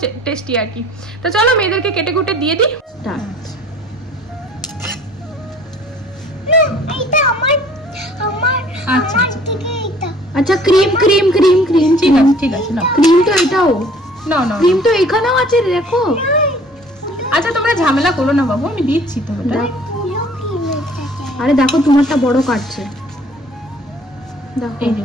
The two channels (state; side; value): normal; both; correlation 0.54